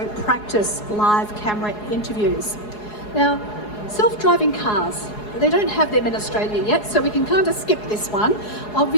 practice live camera interviews. Now, self-driving cars. they don't have them in Australia yet, so we can kind of skip this one.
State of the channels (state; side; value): late; right; 4.8 ms